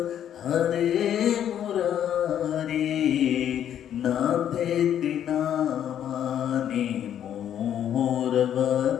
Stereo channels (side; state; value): right; quieter; 10.0 dB